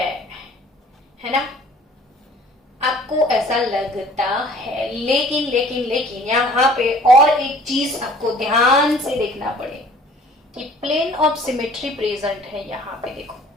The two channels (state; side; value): normal; both; correlation 0.52